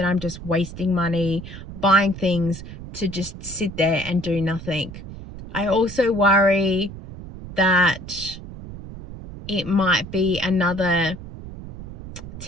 I'm just wasting money buying things to just sit there and do nothing. I also worry that it might be another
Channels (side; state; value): right; noise; rumble, 12 dB below the sound